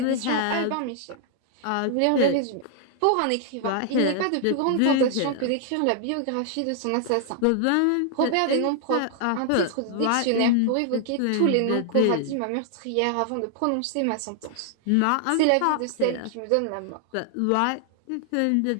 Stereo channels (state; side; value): different; both; correlation 0.00